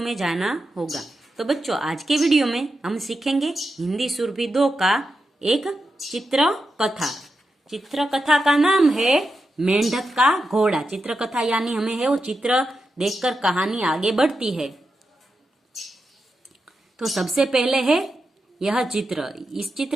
जाना होगा। तो बच्चों, आज के वीडियो में हम सीखेंगे हिंदी सुरभि 2 का एक चित्र कथा। चित्र कथा का नाम है मेंढक का घोड़ा। चित्र कथा यानी हमें है वो चित्र देखकर कहानी आगे बढ़ती है। तो सबसे पहले है यह चित्र। इस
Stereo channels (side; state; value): both; normal; correlation 0.88